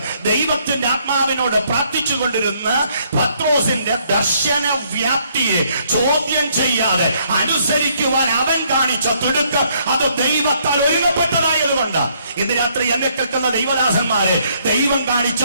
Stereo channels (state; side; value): inverted; both; correlation -0.68